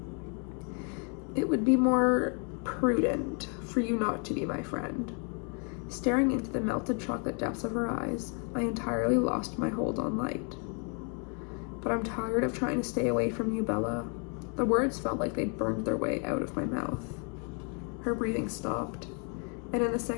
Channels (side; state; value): right; quieter; 38.4 dB